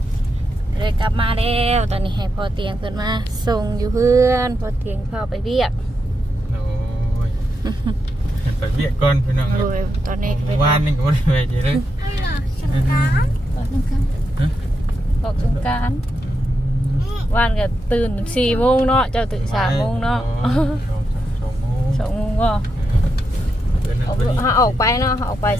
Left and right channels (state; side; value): normal; both; correlation 0.85